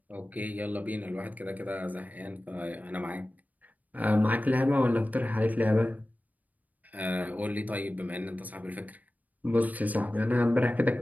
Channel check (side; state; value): left; late; 0.078 ms